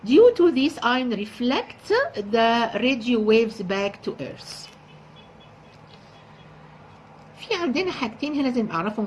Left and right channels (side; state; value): both; identical; correlation 1.00